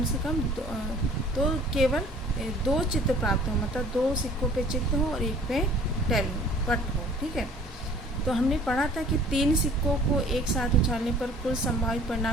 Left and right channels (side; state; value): both; normal; correlation 0.51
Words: से कम तो केवल 2 चित्त प्राप्त हो, मतलब 2 सिक्कों पे चित्त हो और एक पे टेल हो, पट हो, ठीक है। तो हमने पढ़ा था कि 3 सिक्कों को एक साथ उछालने पर कुल संभावित